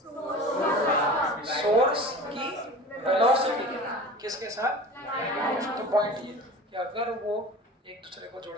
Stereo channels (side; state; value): both; normal; correlation 0.37